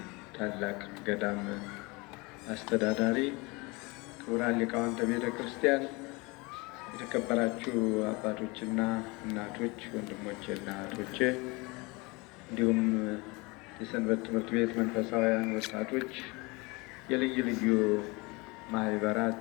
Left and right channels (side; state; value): right; quieter; 25.9 dB